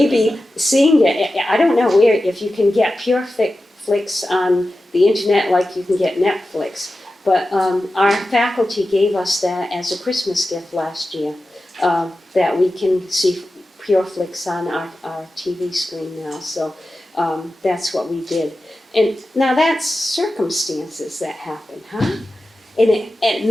seeing it, I don't know where, if you can get pure flicks on the internet like you can get Netflix. But our faculty gave us that as a Christmas gift last year, that we can see pure flicks on our TV screen now. So that's what we did. And now that's circumstances that happen, huh? And it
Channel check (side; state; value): both; normal; correlation 0.93